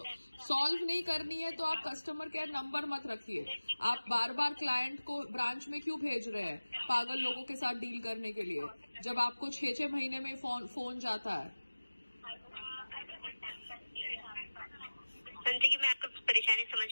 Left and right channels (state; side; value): inverted; both; correlation -1.00